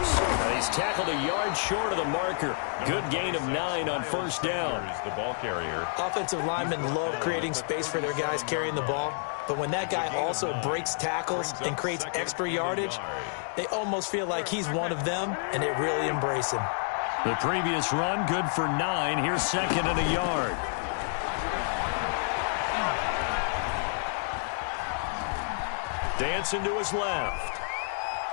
And he's tackled a yard short of the marker. Good gain of 9 on first down. The ball carrier. Offensive linemen love creating space for their guys carrying the ball. But when that guy also breaks tackles and creates extra yardage, they almost feel like he's one of them, and they really embrace him. The previous run, good for 9. Here's 2nd and a yard. Dancing to his left.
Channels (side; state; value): right; silent; digital silence